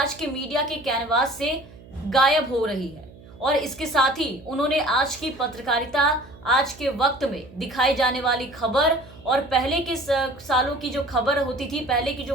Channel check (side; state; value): right; noise; hum, 21 dB below the sound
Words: के मीडिया के कैनवास से गायब हो रही है। और इसके साथ ही उन्होंने आज की पत्रकारिता, आज के वक्त में दिखाई जाने वाली खबर और पहले के सालों की जो खबर होती थी, पहले की